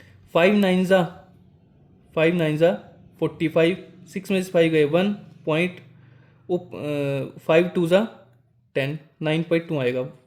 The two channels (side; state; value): both; identical; correlation 1.00